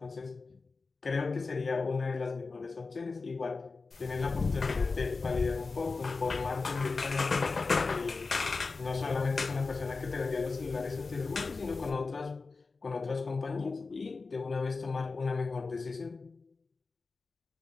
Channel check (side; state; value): right; quieter; 4.1 dB